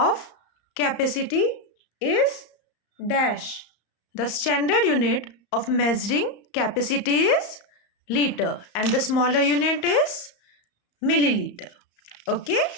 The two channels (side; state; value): right; late; 34 ms